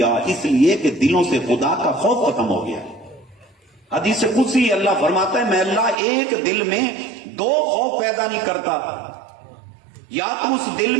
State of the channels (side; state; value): left; drops out; at 6.0 s